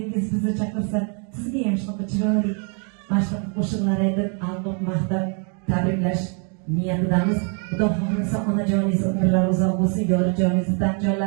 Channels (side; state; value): left; quieter; 38.8 dB